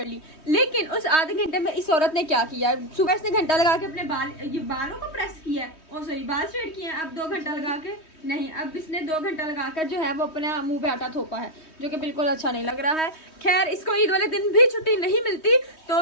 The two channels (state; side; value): late; right; 3.2 ms